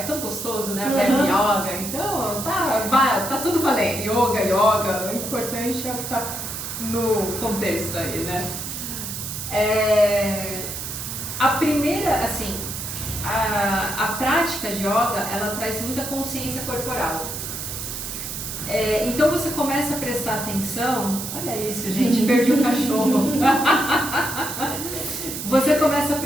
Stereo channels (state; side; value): noise; right; hiss, 6 dB below the sound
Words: tão gostoso, né? Yoga, então tá tudo valendo. Yoga, o importante é o que tá no contexto aí, né? A primeira, assim, a prática de yoga, ela traz muita consciência corporal. Então você começa a prestar atenção, olha isso, gente, perdi o cachorro. Você começa a